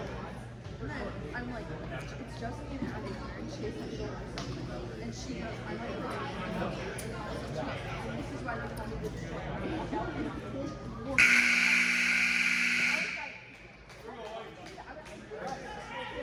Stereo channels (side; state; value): both; identical; correlation 1.00